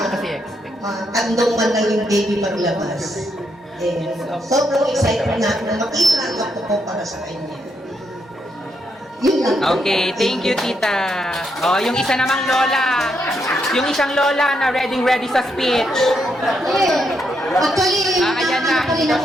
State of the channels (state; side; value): normal; both; correlation 0.79